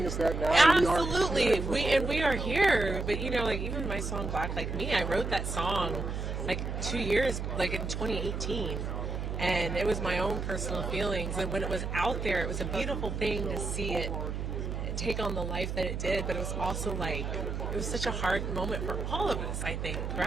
is that now absolutely we are here. But even my song Black Like Me, I wrote that song like 2 years, like in 2018, and it was my own personal feelings. And when it was out there, it was a beautiful thing to see it take on the life that it did. But it was also like, it was such a hard moment for all of us, I think,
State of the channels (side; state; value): right; noise; hum, 4 dB below the sound